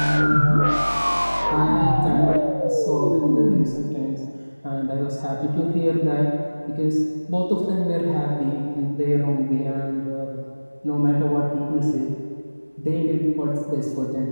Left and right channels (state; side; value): inverted; both; correlation -1.00